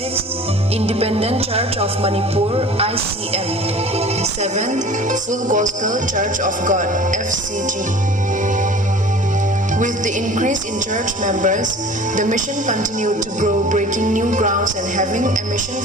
Independent Church of Manipur (ICM). Seventh, Full Gospel Church of God (FCG). With the increase in church members, the mission continued to grow, breaking new grounds and having a mission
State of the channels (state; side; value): normal; both; correlation 0.44